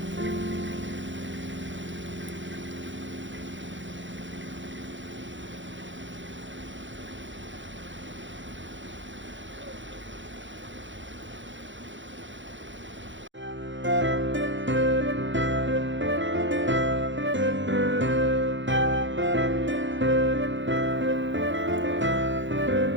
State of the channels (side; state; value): left; late; 0.54 ms